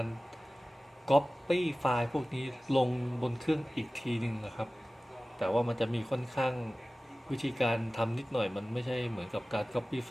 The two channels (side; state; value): both; normal; correlation 0.97